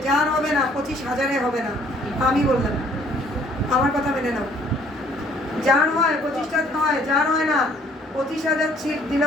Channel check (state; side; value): normal; both; correlation 0.60